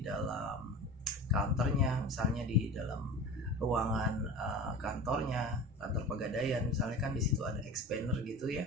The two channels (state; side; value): normal; both; correlation 0.34